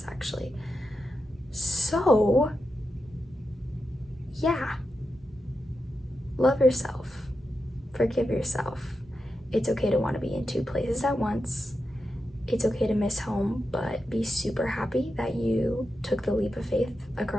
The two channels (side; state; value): both; normal; correlation 0.89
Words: actually. So, yeah. Love yourself. Forgive yourself. It's okay to want to be in 2 places at once. It's okay to miss home, but be super happy that you took the leap of faith